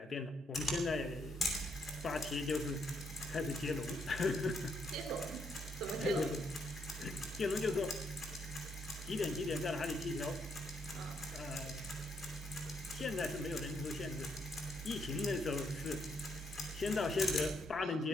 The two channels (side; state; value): both; normal; correlation 0.75